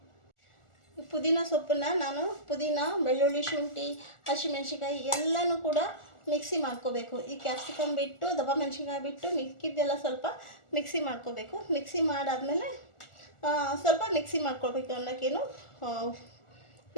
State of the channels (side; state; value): right; late; 1.4 ms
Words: ಪುದೀನ ಸೊಪ್ಪನ್ನು ನಾನು ಪುದೀನ, ಬೆಳ್ಳುಳ್ಳಿ, ಶುಂಠಿ, ಹಸಿಮೆಣ್ಸಿನ್ಕಾಯಿ ಎಲ್ಲನೂ ಕೂಡ ಮಿಕ್ಸಿ ಮಾಡ್ಕೋಬೇಕು. ಈ ಕ್ಯಾಪ್ಸಿಕಮ್ ಬಿಟ್ಟು, ದಪ್ಪ ಮೆಣಸಿನ್ಕಾಯಿ ಬಿಟ್ಟು ಮಿಕ್ಕಿದ್ದೆಲ್ಲ ಸ್ವಲ್ಪ ಮಿಕ್ಸಿ ಮಾಡ್ಕೋಬೇಕು. ಮಿಕ್ಸಿ ಮಾಡಾದಮೇಲೆ ಸ್ವಲ್ಪ ಮಿಕ್ಸಿ ಮಾಡ್ಕೊಳ್ಬೇಕು ಅನ್ನೋಕ್ಕೇನು,